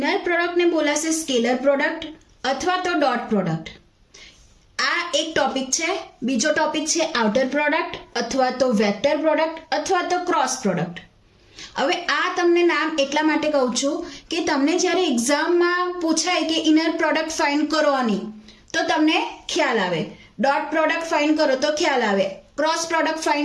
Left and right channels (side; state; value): both; identical; correlation 1.00